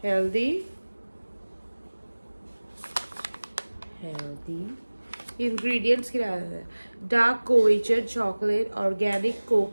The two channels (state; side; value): inverted; both; correlation -1.00